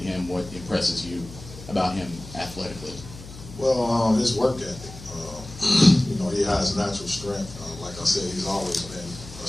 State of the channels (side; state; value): left; noise; hum, 15 dB below the sound